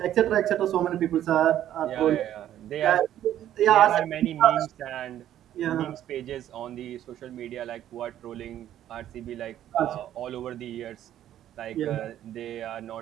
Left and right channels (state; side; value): quieter; left; 11.7 dB